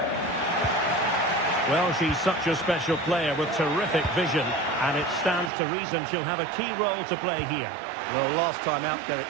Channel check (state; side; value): drops out; left; at 5.5 s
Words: Well, she's such a special player with terrific vision, and it stands to reason she'll have a key role to play here. Well, last time out,